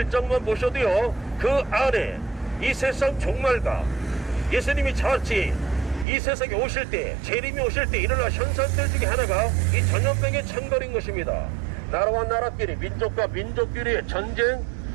보셔도요, 그 안에 이 세상 종말과 예수님이 자칫 이 세상에 오실 때, 재림이 오실 때 일어날 현상들 중에 하나가 이 전염병의 창궐인 것입니다. 나라와 나라끼리, 민족과 민족끼리의 전쟁,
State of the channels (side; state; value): left; drops out; at 6.1 s